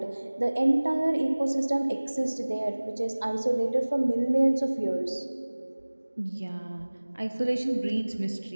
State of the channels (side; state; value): both; inverted; correlation -1.00